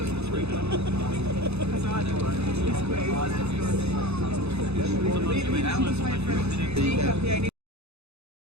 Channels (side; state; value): left; late; 0.80 ms